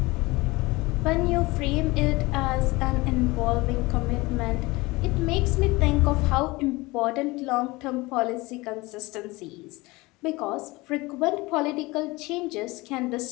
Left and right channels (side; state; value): right; quieter; 22.4 dB